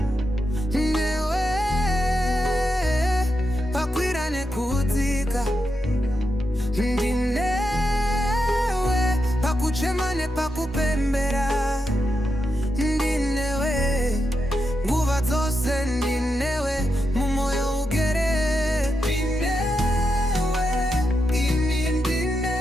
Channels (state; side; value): normal; both; correlation 0.86